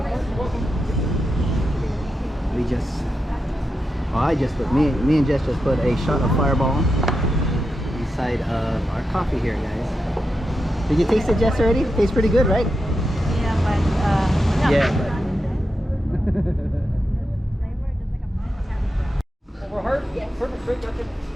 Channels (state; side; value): normal; both; correlation 0.87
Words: we just, I just put, me and Jess just put a shot of Fireball inside of our coffee here, guys. Did you taste it, Jess, already? It tastes pretty good, right? Yeah, but yeah, Over heart? Yes. Perfect, great, that's it.